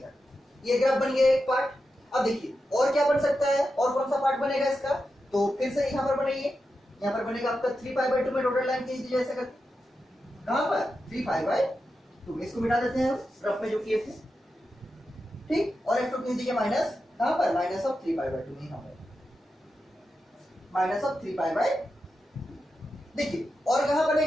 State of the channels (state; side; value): normal; both; correlation 0.89